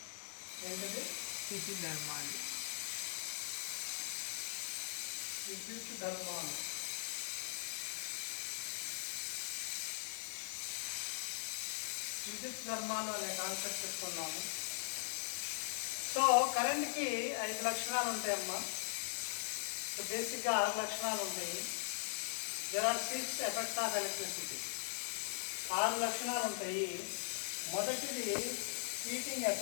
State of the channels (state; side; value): silent; right; 51 dB below the other